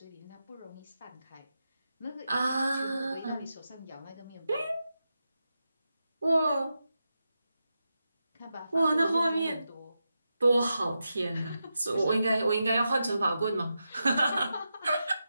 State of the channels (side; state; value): both; inverted; correlation -0.88